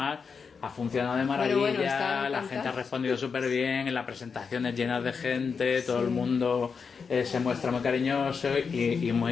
ha funcionado de maravilla, la gente ha respondido súper bien, en las presentaciones llenas de gente, todo el mundo se muestra muy cariñoso y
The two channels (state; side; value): quieter; right; 5.6 dB